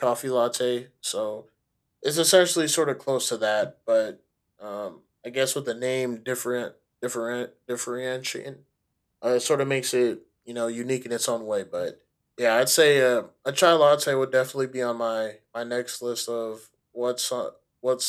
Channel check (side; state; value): both; identical; correlation 1.00